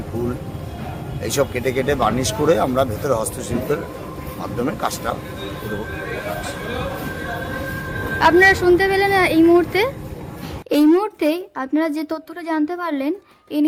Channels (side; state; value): both; identical; correlation 1.00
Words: ফুল, এইসব কেটে কেটে বার্নিশ করে আমরা ভেতরে হস্তশিল্পের মাধ্যমে কাজটা করব। আপনারা শুনতে পেলেন এই মুহূর্তে আপনারা যে তথ্যটা জানতে পারলেন,